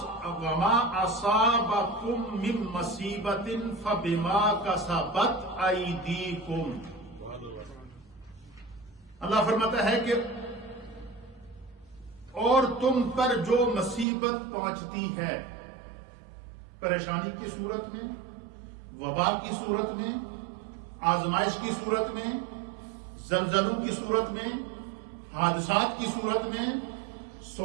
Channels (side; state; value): left; drops out; at 14.1 s